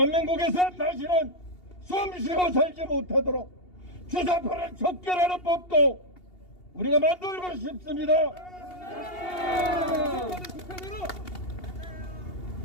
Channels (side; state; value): right; late; 2.8 ms